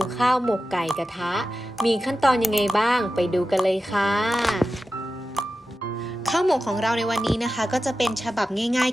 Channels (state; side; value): normal; both; correlation 0.93